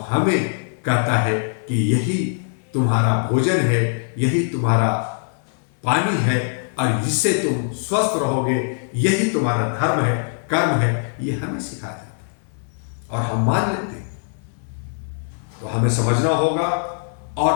हमें कहता है कि यही तुम्हारा भोजन है, यही तुम्हारा पानी है, और इससे तुम स्वस्थ रहोगे, यही तुम्हारा धर्म है, कर्म है। ये हमें सिखाया जाता है और हम मान लेते हैं। तो हमें समझना होगा, और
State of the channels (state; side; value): silent; right; 60 dB below the other